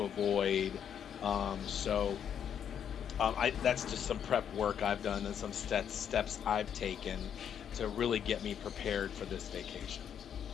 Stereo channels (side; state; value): right; quieter; 8.6 dB